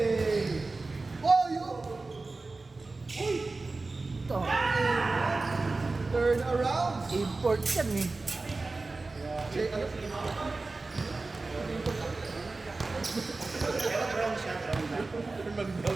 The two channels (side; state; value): left; quieter; 3.5 dB